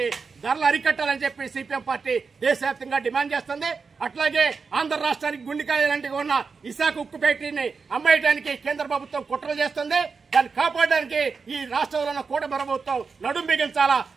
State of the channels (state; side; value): quieter; left; 5.0 dB